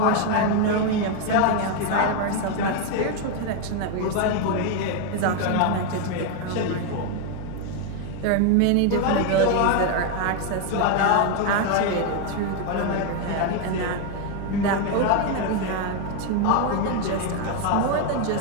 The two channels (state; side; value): different; both; correlation 0.01